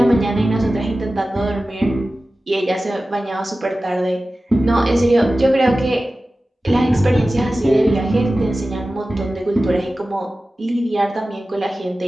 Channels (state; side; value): normal; both; correlation 0.95